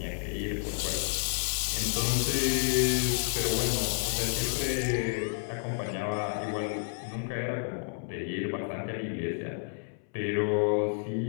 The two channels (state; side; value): silent; right; 58 dB below the other